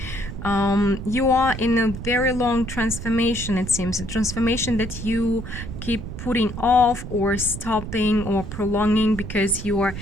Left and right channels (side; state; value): right; noise; rumble, 8 dB below the sound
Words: You are in a very long transformation, it seems, a transformation that you keep putting off or stopping or prolonging because you are